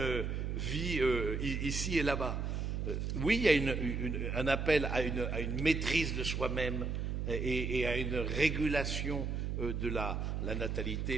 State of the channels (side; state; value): right; noise; hum, 1 dB below the sound